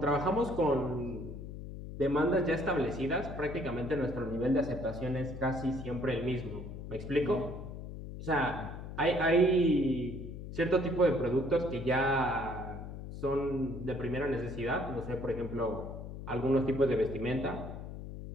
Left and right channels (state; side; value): noise; left; hum, 9 dB below the sound